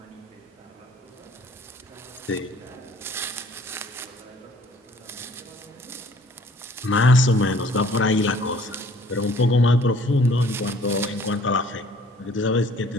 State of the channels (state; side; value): normal; both; correlation 0.55